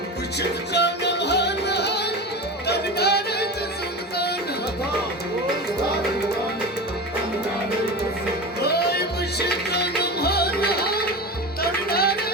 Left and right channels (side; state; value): both; normal; correlation 0.27